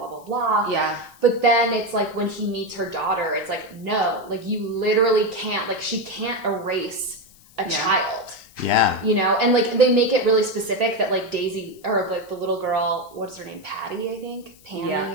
blah blah. Yeah. But then it's like when he meets her daughter, it's like no, like you literally can't. Like she can't erase a child. Yeah. You know, and like they make it really specific that like Daisy or like the little girl, what's her name? Patty, I think.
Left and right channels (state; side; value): noise; left; hiss, 26 dB below the sound